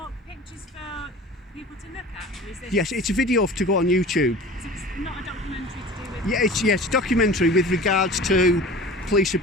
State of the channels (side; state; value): both; normal; correlation 0.39